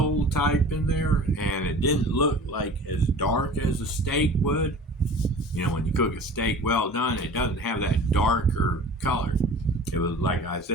type in there, and it didn't look like as dark as a steak would. You know, when you cook a steak well done, it doesn't have that darker color. It was like I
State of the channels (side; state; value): both; normal; correlation 0.42